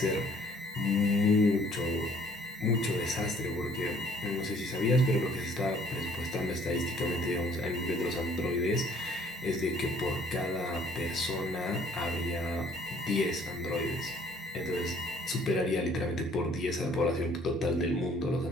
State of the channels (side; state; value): both; normal; correlation 0.59